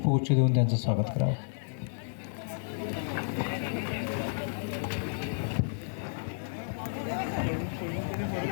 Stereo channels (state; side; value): silent; right; digital silence